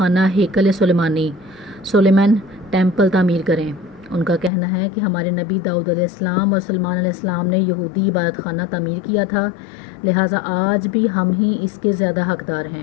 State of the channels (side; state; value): right; drops out; at 4.5 s